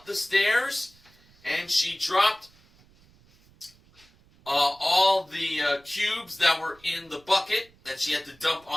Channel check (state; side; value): noise; right; rumble, 29 dB below the sound